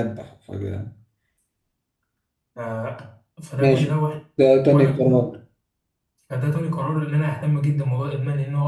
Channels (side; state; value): both; identical; correlation 1.00